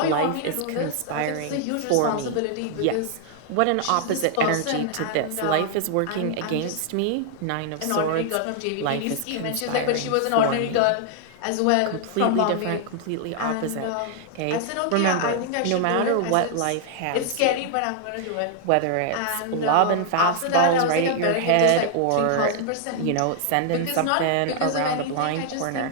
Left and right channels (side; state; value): both; different; correlation 0.00